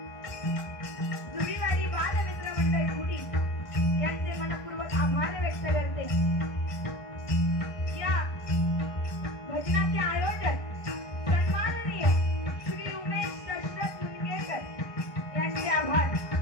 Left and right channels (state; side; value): late; right; 1.6 ms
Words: जुवीवाडी बालमित्र मंडळ खुडी यांचे मनपूर्वक आभार व्यक्त करते। या भजनाचे आयोजक सन्माननीय श्री उमेश दशरथ मुनगेकर यांचे आभार।